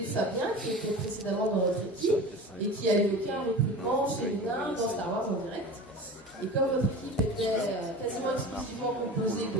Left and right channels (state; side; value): normal; both; correlation 0.34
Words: Fabien, qui était précédemment dans notre équipe, et qui a eu aucun recrutement féminin dans Star Wars en direct. Et comme votre équipe était quasiment exclusivement composée